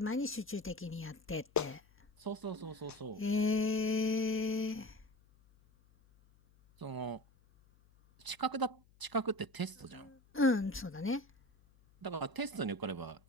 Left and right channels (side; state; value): left; noise; hum, 29 dB below the sound